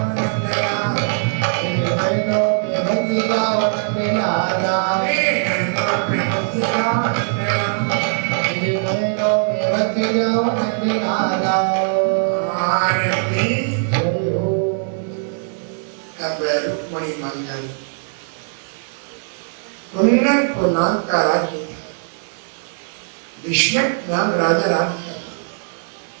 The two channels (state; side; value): silent; left; digital silence